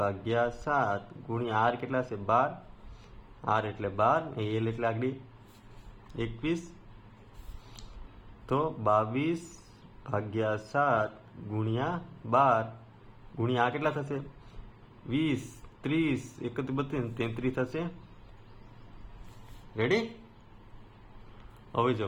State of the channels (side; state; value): both; identical; correlation 1.00